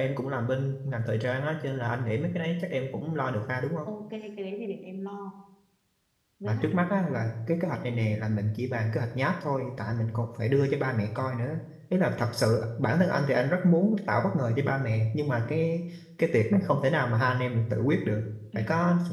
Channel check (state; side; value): identical; both; correlation 1.00